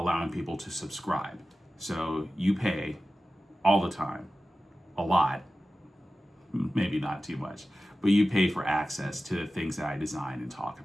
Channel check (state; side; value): normal; both; correlation 0.95